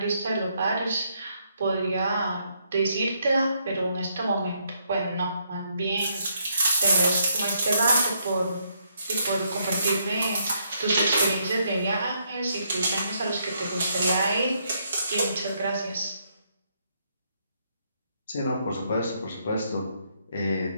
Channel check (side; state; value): both; inverted; correlation -0.74